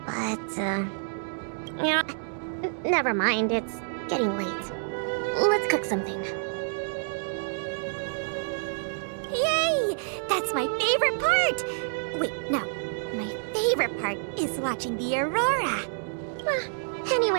But, never mind. It's getting late. Let's cook something. Yay! That's my favorite part! Wait, no. My favorite part is watching the aurora.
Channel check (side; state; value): left; silent; 59 dB below the other